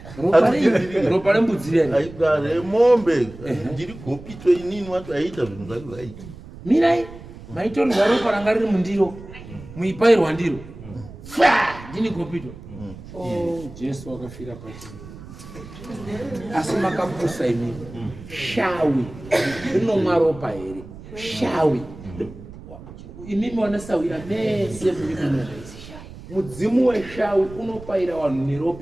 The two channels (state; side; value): noise; right; rumble, 16 dB below the sound